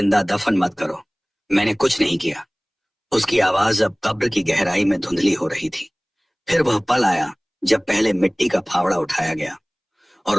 दफन मत करो, मैंने कुछ नहीं किया। उसकी आवाज अब कब्र की गहराई में धुंधली हो रही थी। फिर वह पल आया जब पहले मिट्टी का फावड़ा उठाया गया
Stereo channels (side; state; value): both; identical; correlation 1.00